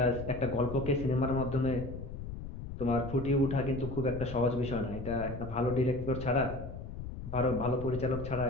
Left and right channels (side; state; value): left; noise; rumble, 9 dB below the sound